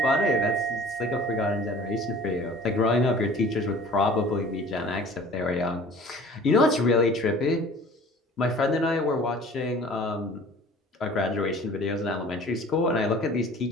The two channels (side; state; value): both; normal; correlation 0.47